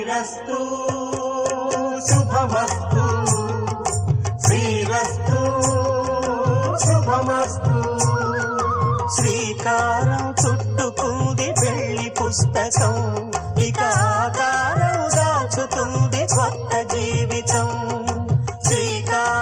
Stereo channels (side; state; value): both; identical; correlation 1.00